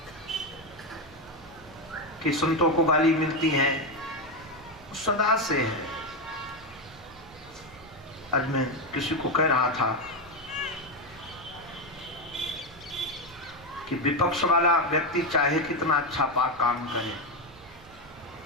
कि संतों को गाली मिलती है, सदा से है। आज मैं किसी को कह रहा था कि विपक्ष वाला व्यक्ति चाहे कितना अच्छा पाक काम करे,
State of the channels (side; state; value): right; noise; hum, 23 dB below the sound